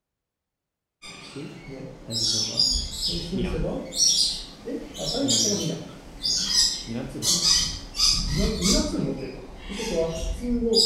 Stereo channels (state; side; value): identical; both; correlation 1.00